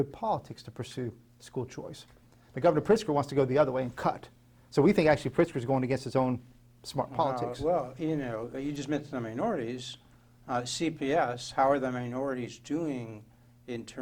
politics to pursue school choice. The Governor Pritzker wants to go the other way and cut. So we think actually Pritzker is going against his own smart politics. Well, you just mentioned the minorities. CPS, how are the minorities doing in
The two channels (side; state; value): both; identical; correlation 1.00